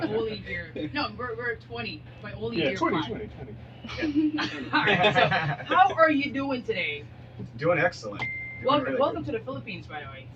only hear. No, we're 20, but I only hear 5. 20. Alright, so how are you doing today? Doing excellent. Welcome to the Philippines, by the way.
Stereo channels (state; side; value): identical; both; correlation 1.00